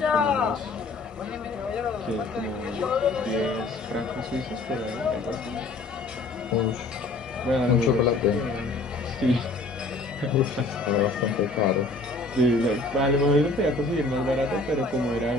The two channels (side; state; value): right; quieter; 3.2 dB